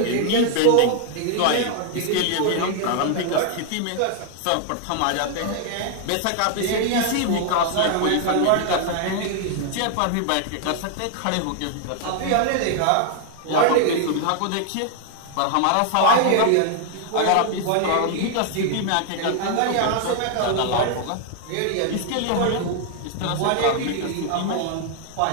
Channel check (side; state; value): both; different; correlation 0.00